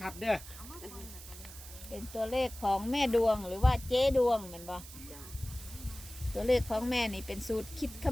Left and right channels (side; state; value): right; noise; hiss, 15 dB below the sound